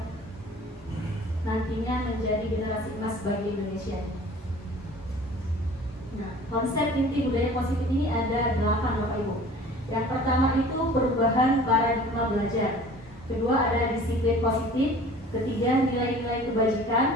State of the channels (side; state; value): both; normal; correlation 0.46